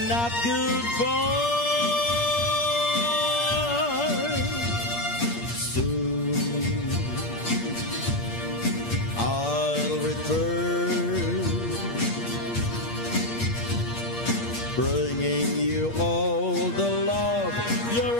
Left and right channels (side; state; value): right; late; 8.5 ms